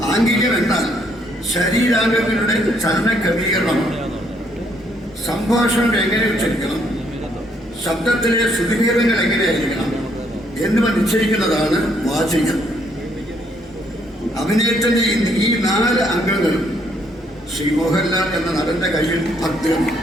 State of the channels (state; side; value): normal; both; correlation 0.70